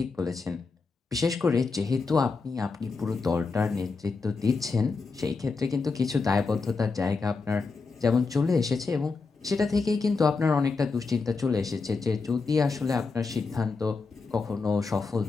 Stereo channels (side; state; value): right; quieter; 4.3 dB